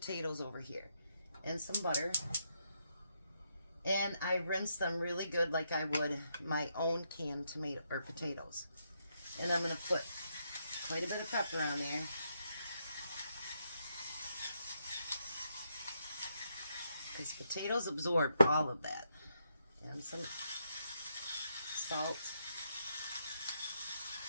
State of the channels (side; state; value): both; inverted; correlation -0.79